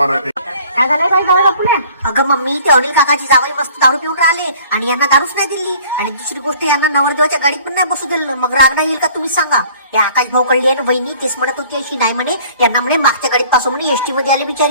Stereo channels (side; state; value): both; inverted; correlation -0.52